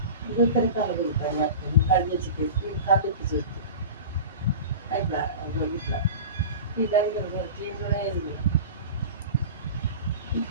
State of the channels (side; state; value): both; inverted; correlation -0.33